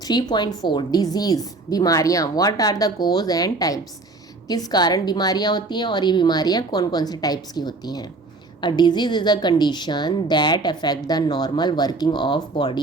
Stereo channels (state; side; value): quieter; left; 3.4 dB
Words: 3.4 डिजीज़, बीमारियाँ, what are the cause and types. किस कारण बीमारियाँ होती हैं और ये बीमारियाँ कौन कौन से टाइप्स की होती हैं। A disease is a condition that affect the normal working of